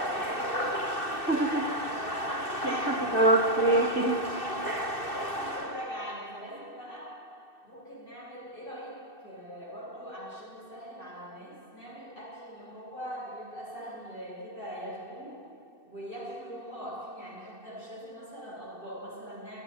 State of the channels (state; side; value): late; right; 2.6 ms